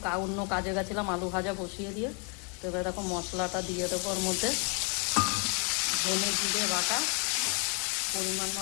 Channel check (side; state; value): right; quieter; 37.2 dB